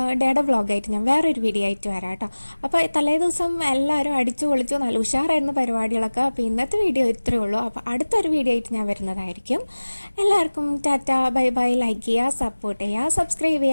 ഡേയുടെ വ്ളോഗായിട്ട് ഞാൻ വേറൊരു വീഡിയോ ആയിട്ട് വരാം കേട്ടോ. അപ്പോൾ തലേദിവസം എല്ലാവരും അടിച്ചു പൊളിച്ചു, നല്ല ഉഷാറായിരുന്നു പരിപാടികളൊക്കെ. അപ്പോൾ ഇന്നത്തെ വീഡിയോ ഇത്രയേ ഉള്ളൂ. അപ്പോൾ അടുത്തൊരു വീഡിയോ ആയിട്ട് ഞാൻ വരുന്നതായിരിക്കും. എല്ലാവർക്കും ടാറ്റ, ബൈ ബൈ. ലൈക്ക് ചെയ്യുക, സപ്പോർട്ട് ചെയ്യുക, സബ്സ്ക്രൈബ്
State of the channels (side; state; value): both; inverted; correlation -1.00